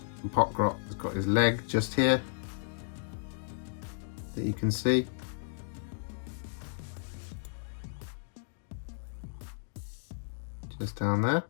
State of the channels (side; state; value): right; silent; digital silence